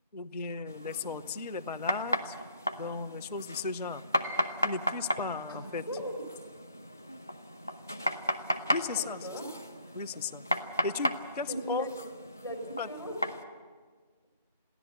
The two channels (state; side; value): inverted; both; correlation -0.61